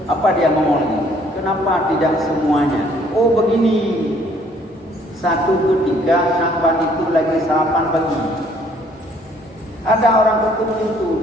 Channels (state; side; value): normal; both; correlation 0.62